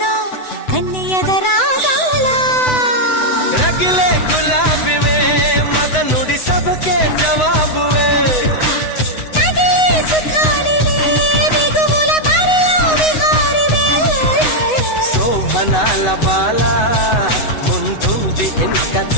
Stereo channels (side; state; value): right; late; 8.0 ms